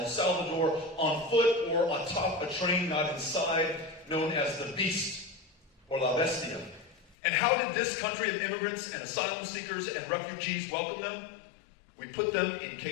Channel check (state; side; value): drops out; right; at 7.2 s